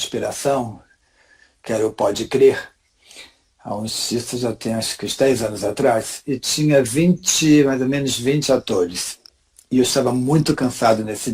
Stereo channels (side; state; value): both; identical; correlation 1.00